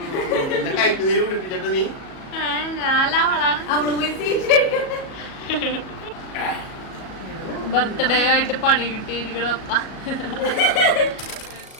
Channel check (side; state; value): right; late; 37 ms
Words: ബർത്ത്ഡേ ആയിട്ട് പണി കിട്ടിയിരിക്കണം.